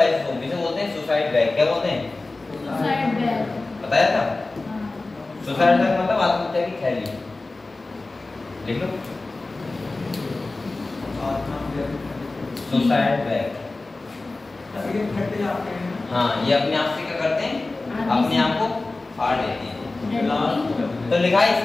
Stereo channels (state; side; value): quieter; right; 3.2 dB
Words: इसे बोलते हैं सुसाइड बैग। क्या बोलते हैं? Suicide bag. बताया था। सुसाइड बैग मतलब आत्महत्या की थैली। लिख लो, सुसाइड बैग। हाँ, ये अपने आप से क्या करते हैं? अपने आप को फाड़ लेते हैं। तो लिखा है